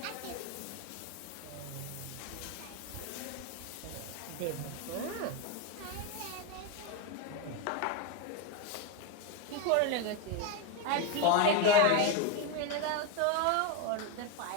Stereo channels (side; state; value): both; different; correlation 0.03